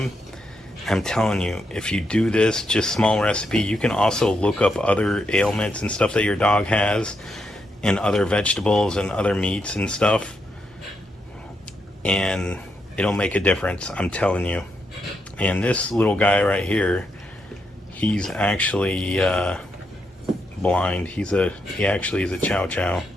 I'm telling you, if you do this, just small recipe, you can also look up other ailments and stuff that your dog has, and other vegetables and other meats and stuff, and it'll make a difference, I'm telling you. And this little guy right here, he's actually blind. He actually is a chow chow,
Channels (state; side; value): normal; both; correlation 0.81